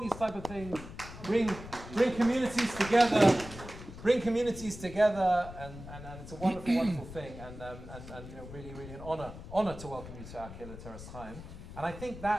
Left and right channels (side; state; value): left; noise; rumble, 13 dB below the sound